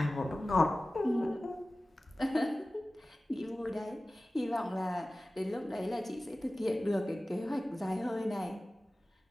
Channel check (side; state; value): both; normal; correlation 0.97